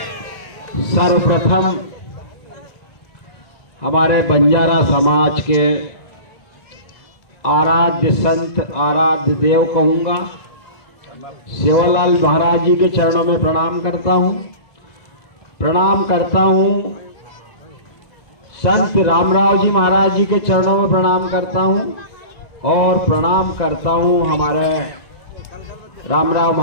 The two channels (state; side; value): late; right; 2.0 ms